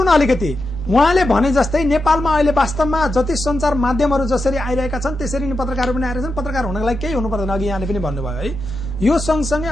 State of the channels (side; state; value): left; noise; rumble, 18 dB below the sound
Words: न अलिकति। उहाँले भने जस्तै नेपालमा अहिले वास्तवमा जति सञ्चार माध्यमहरू जसरी आइरहेका छन् त्यसरी नै पत्रकारहरू पनि आइरहेका छन्। पत्रकार हुनको लागि केही हुनु पर्दैन, अघि यहाँले पनि भन्नुभयो है। यो सँगसँगै